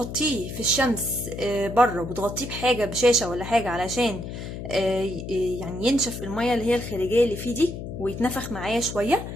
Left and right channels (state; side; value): noise; left; hum, 8 dB below the sound